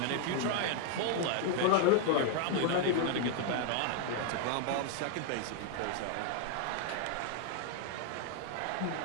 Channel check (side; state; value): both; different; correlation 0.00